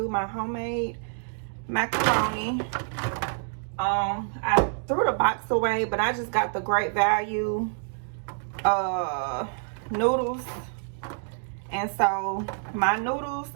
my homemade macaroni. I threw the box away, but I just got the Great Value noodles. And so my noodles,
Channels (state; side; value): silent; left; digital silence